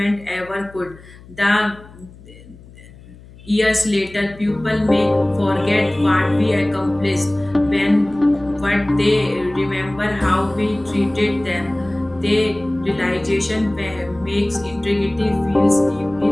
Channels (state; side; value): noise; left; hum, 21 dB below the sound